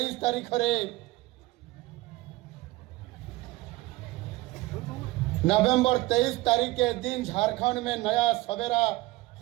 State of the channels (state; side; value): quieter; left; 19.5 dB